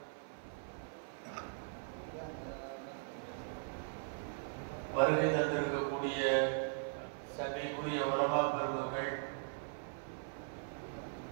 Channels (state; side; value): silent; left; 51 dB below the other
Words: வருகை தந்திருக்கக்கூடிய சபைக்குரிய உலமா பெருமக்கள்,